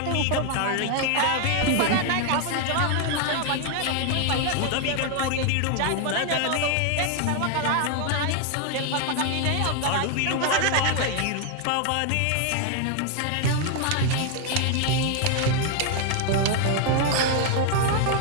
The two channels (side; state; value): both; different; correlation 0.00